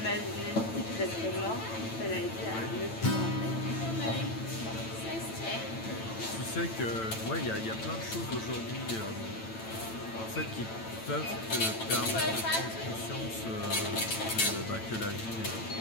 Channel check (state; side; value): late; right; 9.0 ms